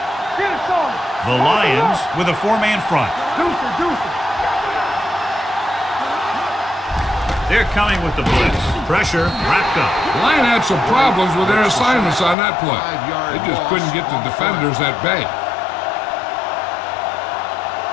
Get it started. The Lions with a four-man front. Deuce it. They're coming with the blitz. Pressure wrapped up. The Lions had some problems with their assignments on that play. They just couldn't get the defenders at bay.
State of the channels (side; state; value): right; drops out; at 12.4 s